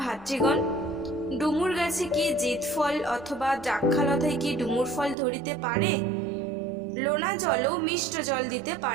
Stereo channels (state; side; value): drops out; left; at 5.2 s